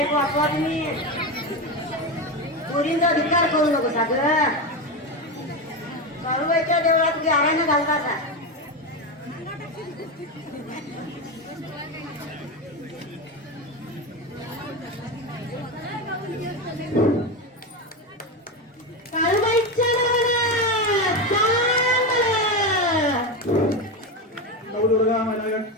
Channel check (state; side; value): normal; both; correlation 0.16